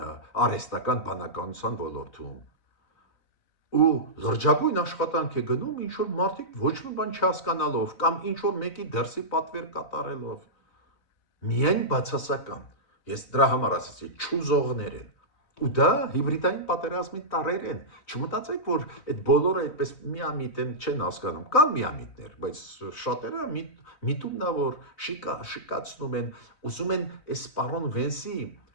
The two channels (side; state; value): right; late; 4.0 ms